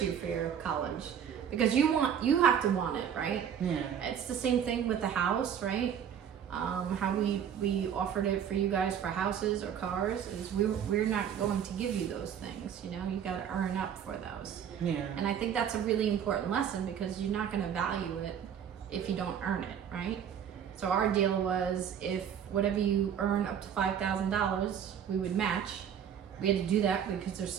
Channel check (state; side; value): quieter; left; 8.6 dB